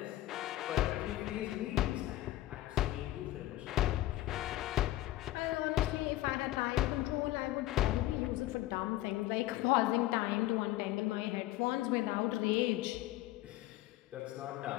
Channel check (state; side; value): quieter; right; 16.0 dB